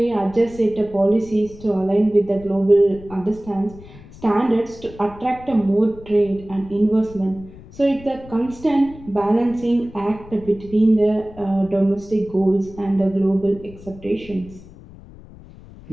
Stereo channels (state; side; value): noise; left; rumble, 19 dB below the sound